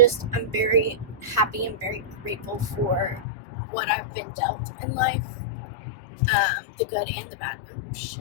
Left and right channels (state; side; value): drops out; right; at 3.2 s